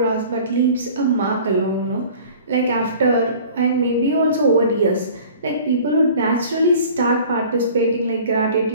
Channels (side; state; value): both; inverted; correlation -0.46